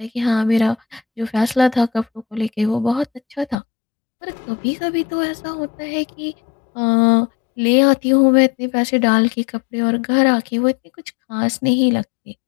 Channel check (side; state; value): right; drops out; at 3.6 s